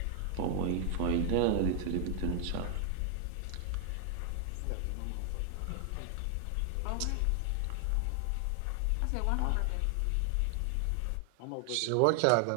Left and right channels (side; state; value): both; different; correlation 0.00